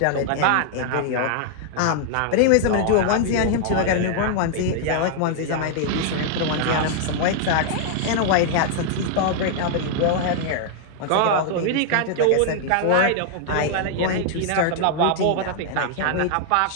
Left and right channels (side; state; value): both; different; correlation 0.00